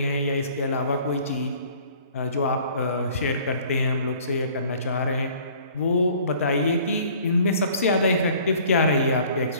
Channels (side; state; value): both; inverted; correlation -0.53